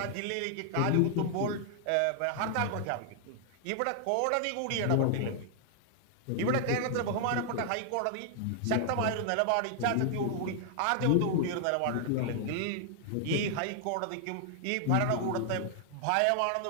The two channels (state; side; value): different; both; correlation 0.00